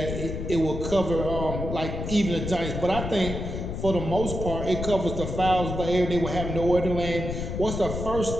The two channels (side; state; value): left; noise; rumble, 5 dB below the sound